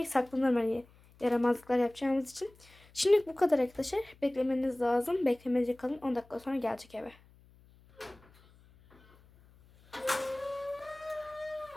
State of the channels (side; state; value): left; noise; hum, 27 dB below the sound